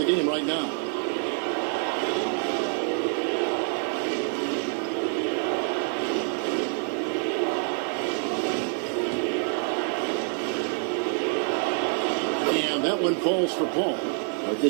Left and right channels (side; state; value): left; quieter; 38.7 dB